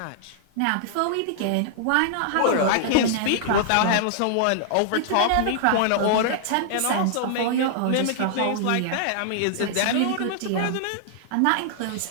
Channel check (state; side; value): different; both; correlation -0.01